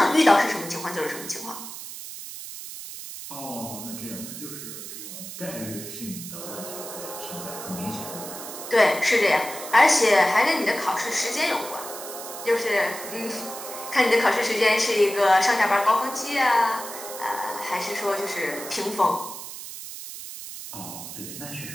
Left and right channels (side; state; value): right; noise; hiss, 10 dB below the sound